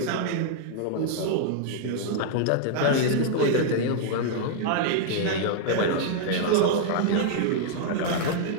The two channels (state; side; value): different; both; correlation -0.01